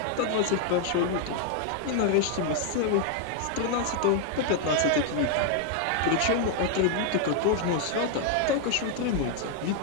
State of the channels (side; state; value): both; different; correlation 0.00